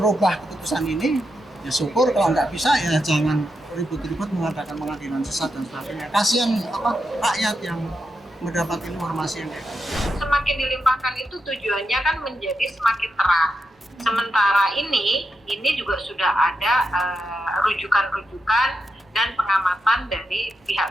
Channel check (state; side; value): normal; both; correlation 0.86